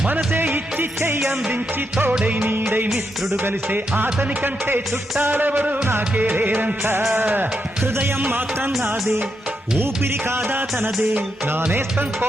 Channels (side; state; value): both; normal; correlation 0.82